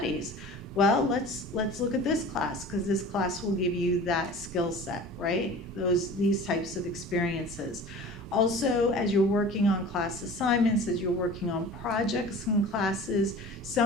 Well, let's look at this class, because this class will give you that skill set, right? These types of experiences. Also, as you're working on class assignments, as you're working on projects and classes,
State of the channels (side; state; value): both; normal; correlation 0.40